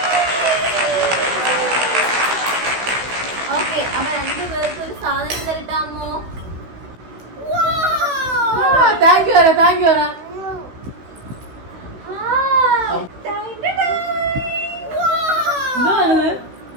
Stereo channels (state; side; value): late; left; 16 ms